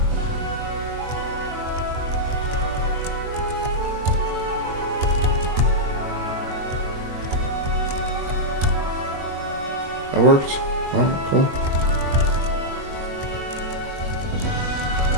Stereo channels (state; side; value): late; left; 21 ms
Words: that worked. All right, cool.